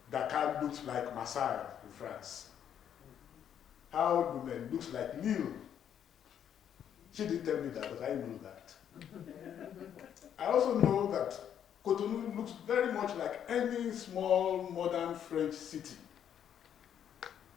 Dakar looks like Marseille in France, how Lomé looks like Lille. She didn't tell me that, but I know that. I also know that Cotonou looks very much like any small modern French city.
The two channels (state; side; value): quieter; right; 9.3 dB